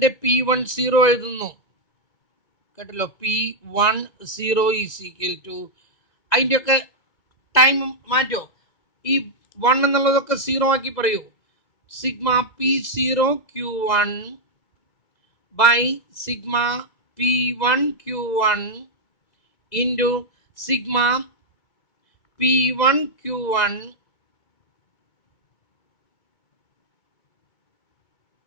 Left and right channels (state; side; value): late; right; 2.2 ms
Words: P10 എഴുതുന്നു കേട്ടല്ലോ P10 ഈസ് ഈക്വൽ ടു അതിൻ്റെയൊക്കെ ടൈം മാറ്റോ ഈ 1 എന്നുള്ളതൊക്കെ 0 ആക്കി പറയൂ sigma P0 Q1 by sigma P1 Q1 into sigma P1 Q1